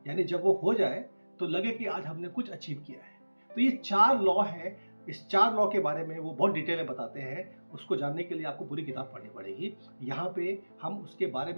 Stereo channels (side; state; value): both; inverted; correlation -1.00